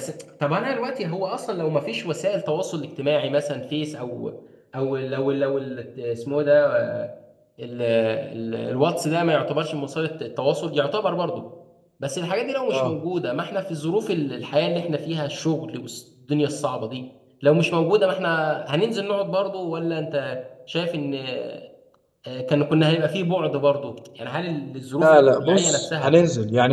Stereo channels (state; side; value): identical; both; correlation 1.00